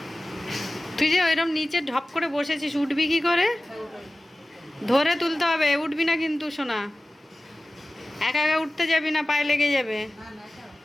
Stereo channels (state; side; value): normal; both; correlation 0.96